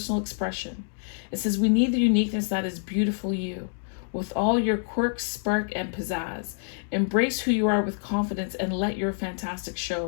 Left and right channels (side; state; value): right; silent; digital silence